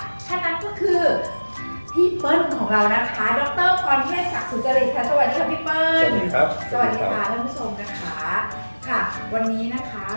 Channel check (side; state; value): both; inverted; correlation -1.00